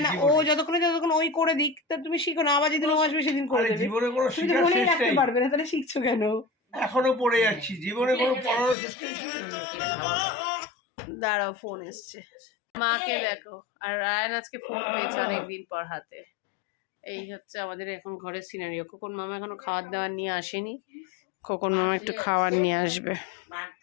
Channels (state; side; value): drops out; right; at 8.8 s